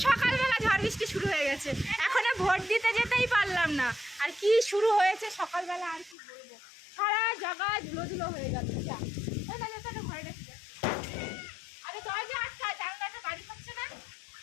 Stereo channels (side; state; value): right; drops out; at 6.2 s